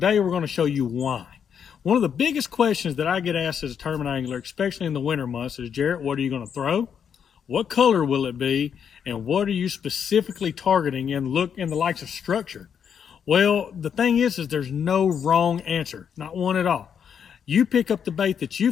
we're going to show you why. One of the biggest questions that I get asked as a tournament angler, especially in the winter months, is Jarrett, what are you going to throw? What color will it be? And what are you specifically targeting in the likes of structure? Well, the thing is there's no wrong answer, not one at all. You pick up the bait that you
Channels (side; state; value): right; quieter; 7.7 dB